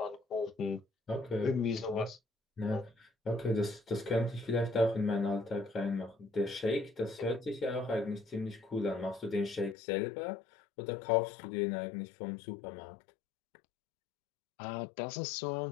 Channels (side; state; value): right; drops out; at 9.8 s